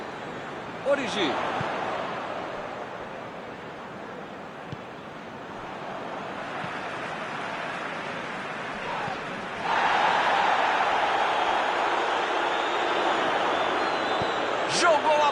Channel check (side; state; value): both; identical; correlation 1.00